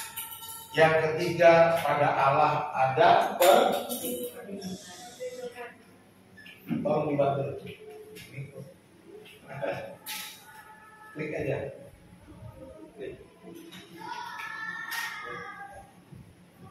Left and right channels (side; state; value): both; identical; correlation 1.00